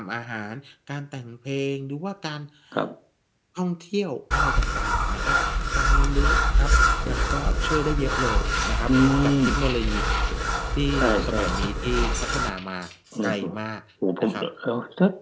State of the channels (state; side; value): identical; both; correlation 1.00